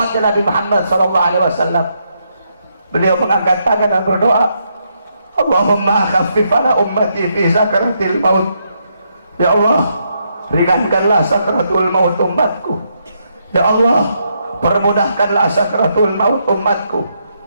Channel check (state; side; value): inverted; both; correlation -0.78